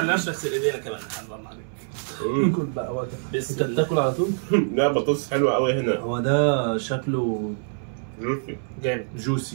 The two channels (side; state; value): left; silent; digital silence